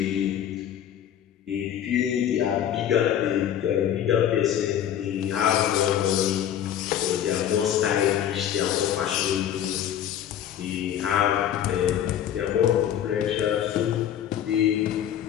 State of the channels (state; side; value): quieter; right; 10.3 dB